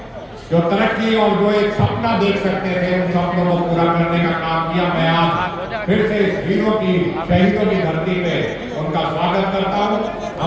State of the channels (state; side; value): identical; both; correlation 1.00